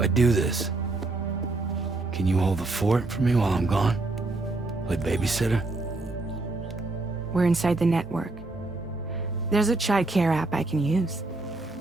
do this, can you hold the fort for me while I'm gone? Play babysitter? We're inside the network. There's a child care app I can use.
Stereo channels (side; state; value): left; quieter; 3.1 dB